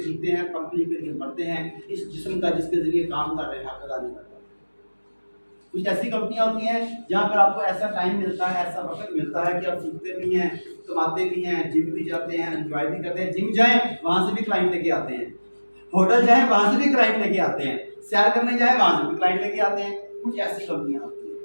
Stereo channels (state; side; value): inverted; both; correlation -1.00